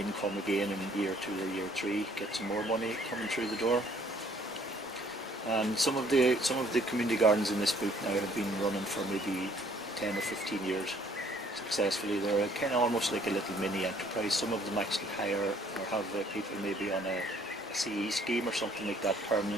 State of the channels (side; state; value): both; normal; correlation 0.61